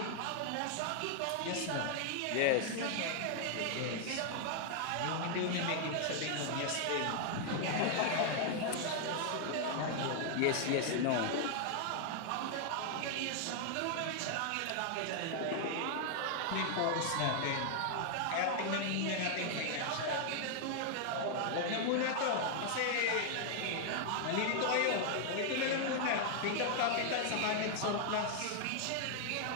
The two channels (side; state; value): both; different; correlation 0.00